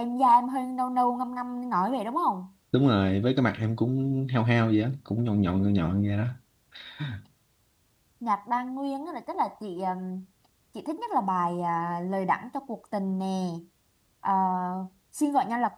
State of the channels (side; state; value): both; identical; correlation 1.00